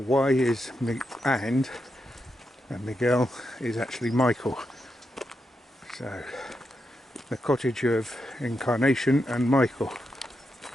is and Miguel is actually Michael. So, the cottage of Incarnation and Michael.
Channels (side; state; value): both; normal; correlation 0.85